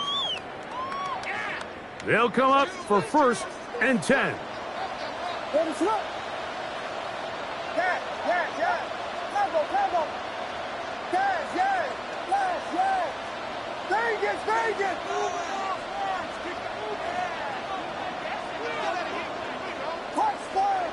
They'll come up for 1st and 10.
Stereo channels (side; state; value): both; identical; correlation 1.00